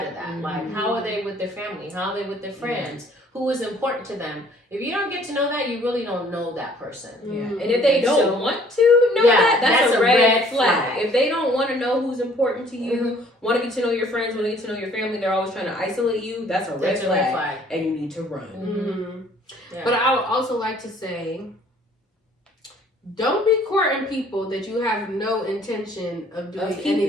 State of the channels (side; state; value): both; normal; correlation 0.57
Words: of that. Like, how are they with their family? How are they with their friends? Who is important to them? If you don't get to know that, you really don't know that person. And if they don't want to know that's a red flag. If they don't want to know who's important to you, want to get to know your friends, want to get to know your family, they're always trying to isolate you, that's a red flag. And you need to run. But I would also like to say, don't be courting people that you have no intention of doing